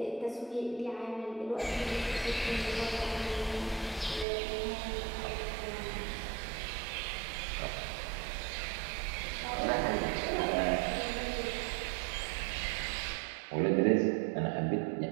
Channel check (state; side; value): drops out; left; at 4.2 s